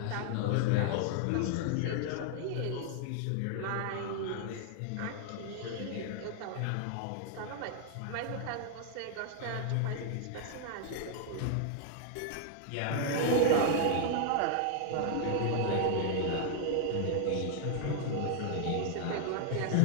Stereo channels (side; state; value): both; different; correlation 0.00